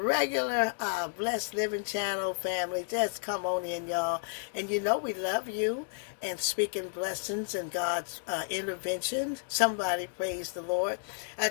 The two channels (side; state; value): right; silent; digital silence